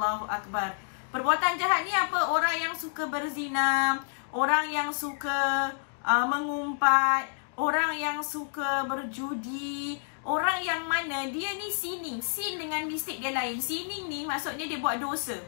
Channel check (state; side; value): silent; right; digital silence